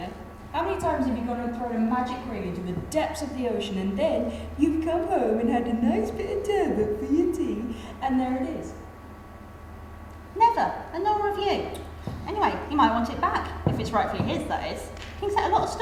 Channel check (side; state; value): both; identical; correlation 1.00